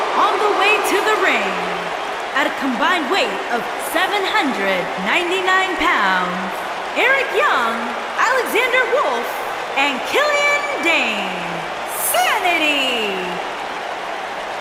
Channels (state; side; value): identical; both; correlation 1.00